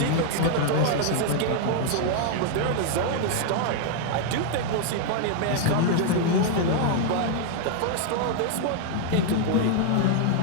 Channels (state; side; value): different; both; correlation 0.00